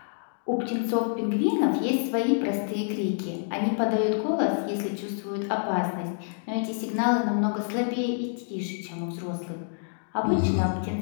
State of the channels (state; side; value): silent; right; digital silence